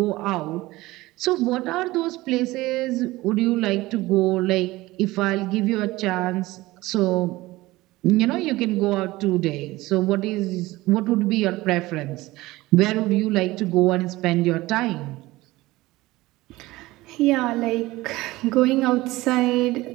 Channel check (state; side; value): quieter; left; 19.0 dB